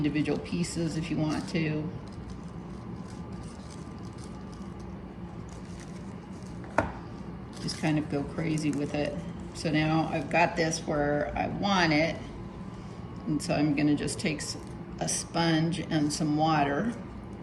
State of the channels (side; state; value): both; identical; correlation 1.00